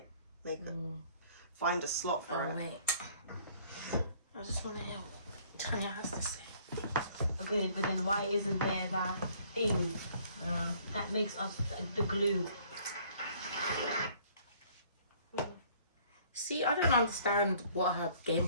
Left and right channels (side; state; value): both; inverted; correlation -0.58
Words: make it, find a slot for it. Oh wait, I just want to hear what Tanya has to say. Good, but then why isn't there that thing that makes us the glue? See, I don't understand what her game